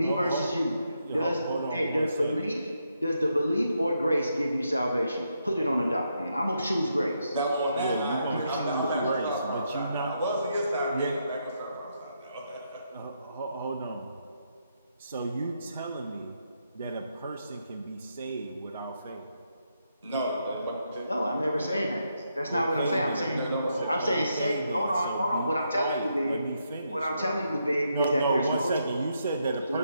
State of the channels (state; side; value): inverted; both; correlation -0.80